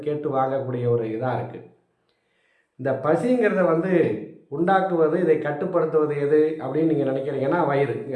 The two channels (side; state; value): both; identical; correlation 1.00